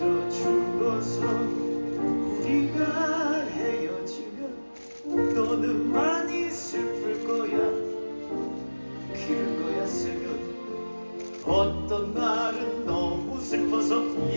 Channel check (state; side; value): inverted; both; correlation -1.00